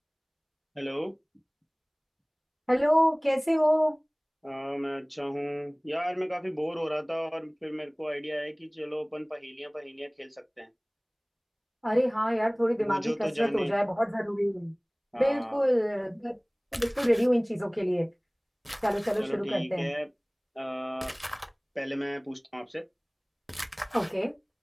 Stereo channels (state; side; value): identical; both; correlation 1.00